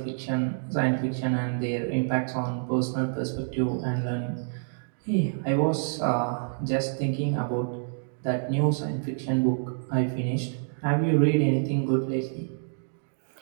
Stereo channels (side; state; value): left; silent; digital silence